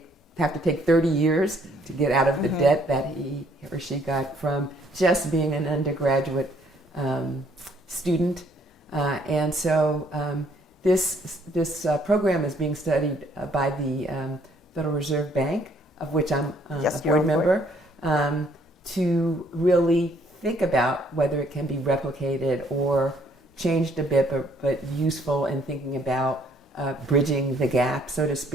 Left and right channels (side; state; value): both; normal; correlation 0.64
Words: have to take 30 years to get out of the debt that he or she got from just being an undergraduate student. And so this program is being studied by the Federal Reserve Bank, of which I'm a board member, to really think about whether it can be replicated or changed a bit, but useful in thinking about bridging the gap, so to